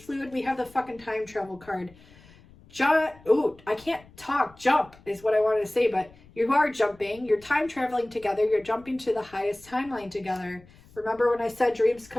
We have the fucking time travel card. I can't talk. Jump is what I wanted to say, but you are jumping. You're time traveling together. You're jumping to the highest timeline together. Remember when I said dreams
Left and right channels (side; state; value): left; noise; rumble, 25 dB below the sound